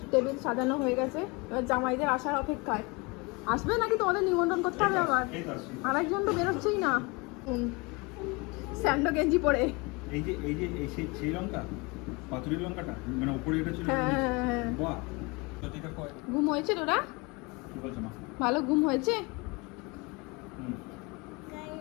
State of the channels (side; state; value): right; quieter; 27.4 dB